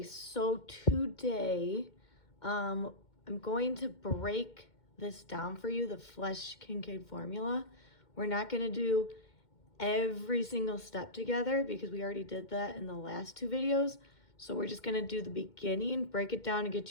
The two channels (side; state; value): right; late; 2.1 ms